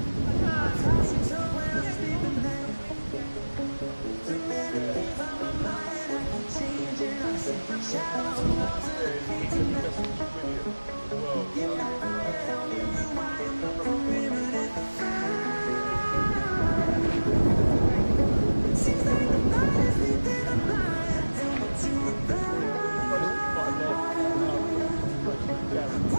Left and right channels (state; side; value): inverted; both; correlation -1.00